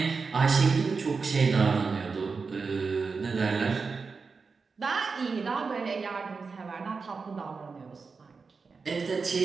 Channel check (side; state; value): left; quieter; 4.8 dB